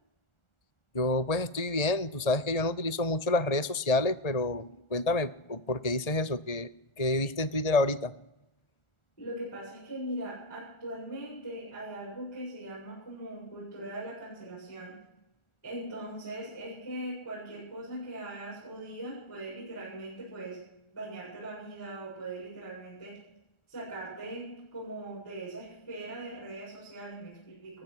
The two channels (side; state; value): right; late; 1.7 ms